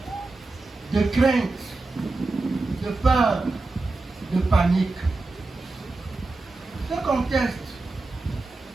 de crainte, de peur, de panique. Ce contexte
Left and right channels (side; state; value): left; quieter; 3.3 dB